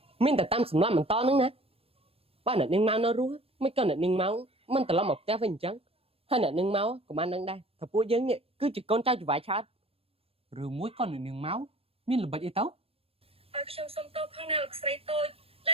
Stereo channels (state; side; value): late; left; 0.28 ms